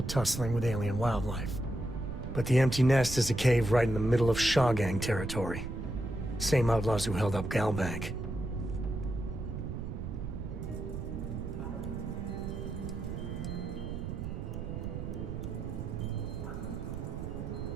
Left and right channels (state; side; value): noise; right; rumble, 6 dB below the sound